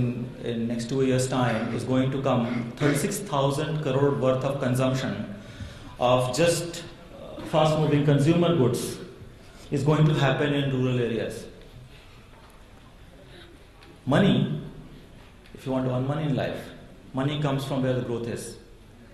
next 2 years' time is going to come 36,000 crore worth of consumption of just fast-moving consumer goods is going to happen in rural areas. Money, if you want to earn money in life, money comes from where the growth is.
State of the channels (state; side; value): identical; both; correlation 1.00